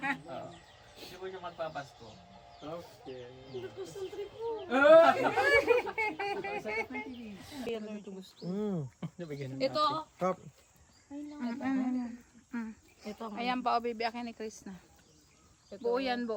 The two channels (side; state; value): both; identical; correlation 1.00